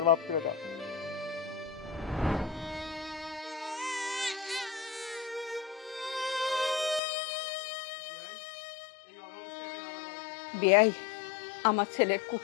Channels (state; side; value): drops out; right; at 7.0 s